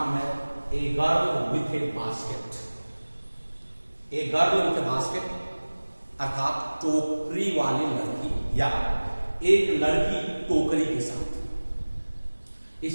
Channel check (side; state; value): both; inverted; correlation -1.00